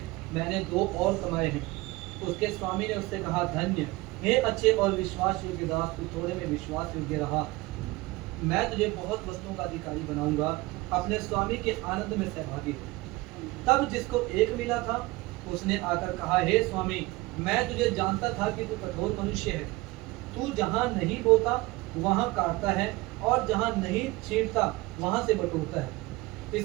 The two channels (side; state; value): left; quieter; 21.1 dB